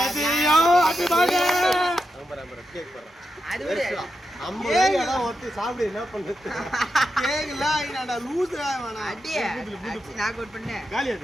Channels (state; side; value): normal; both; correlation 0.87